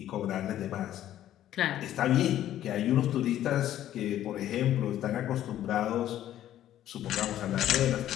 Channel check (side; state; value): right; quieter; 12.2 dB